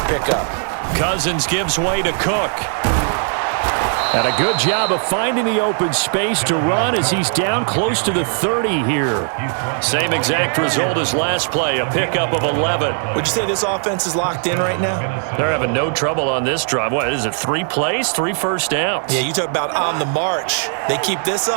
pickup. Cousins gives way to Cook. And a good job of finding the open space to run as he's down close to the 30 here. Same exact result as last play, a pickup of 11. Would you say this offense is locked in right now? They're having no trouble on this drive. What is it, 3 plays, 3 first downs? Yeah, you talk about on the march. They keep this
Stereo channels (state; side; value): silent; left; 55 dB below the other